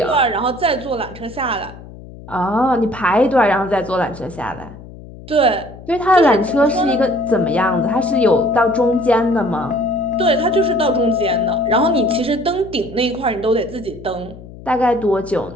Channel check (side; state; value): left; noise; hum, 17 dB below the sound